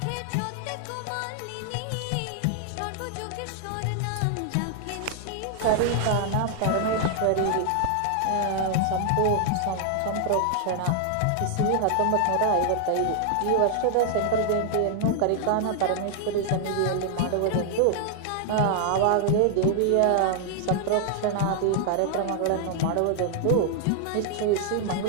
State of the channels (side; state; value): both; different; correlation 0.00